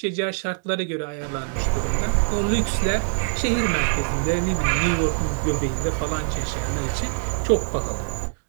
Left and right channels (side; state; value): left; silent; digital silence